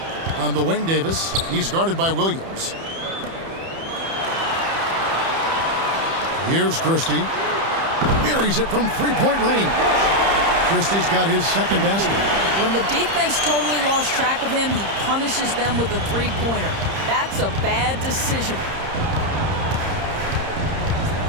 On the wing, Davis. He's guarded by Williams. Here's Christie. Buries it from three-point range. Christie's got his second basket. When the defense totally lost track of him, he punishes them with a three-pointer. That's a bad decision.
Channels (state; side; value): late; left; 30 ms